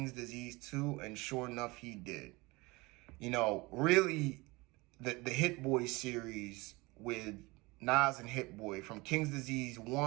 Disease 2? And sure enough, he did. Really, the Hit Boy series with Nas and Hit Boy, from King's Disease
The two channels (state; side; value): quieter; left; 23.7 dB